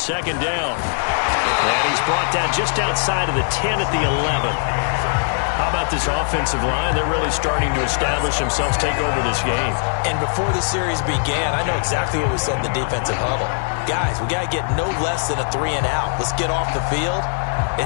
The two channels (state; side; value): silent; right; digital silence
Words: down. And he's brought down just outside of the 10 at the 11. How about this offensive line? They're really starting to establish themselves, take over this game. And before the series began, I know exactly what we said in the defensive huddle. Guys, we got to get no less than a 3 and out. Let's get off the field.